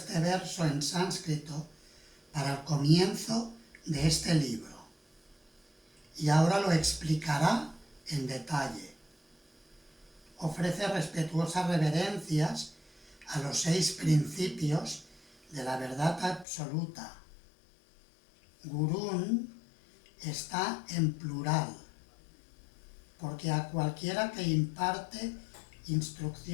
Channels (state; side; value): drops out; right; at 16.4 s